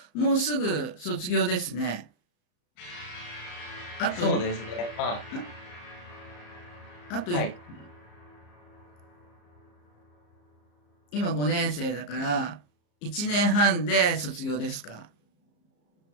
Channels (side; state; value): right; late; 34 ms